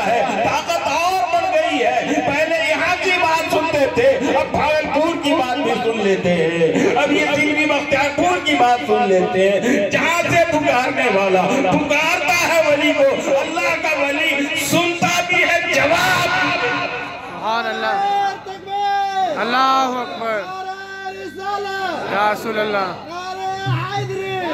ہے، طاقت اور بڑھ گئی ہے۔ پہلے یہاں کی بات سنتے تھے، اب بھاگلپور کی بات بھی سن لیتے ہیں، اب یہ دلی بختیار پور کی بات سن لیتے ہیں۔ جہاں سے پکارنے والا پکارتا ہے ولی کو، اللہ کا ولی سنتا بھی ہے، جواب سبحان اللہ، اللہ اکبر، یا رسول اللہ،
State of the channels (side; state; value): both; identical; correlation 1.00